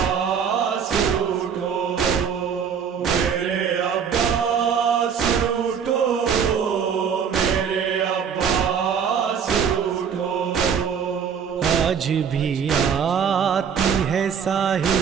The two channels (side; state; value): left; quieter; 7.3 dB